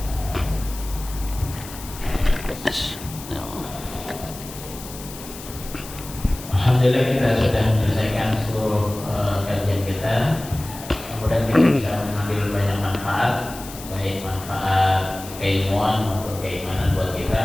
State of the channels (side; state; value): left; noise; hiss, 14 dB below the sound